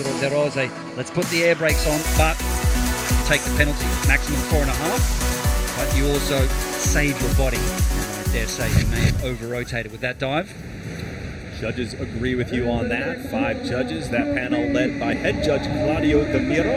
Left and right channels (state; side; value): identical; both; correlation 1.00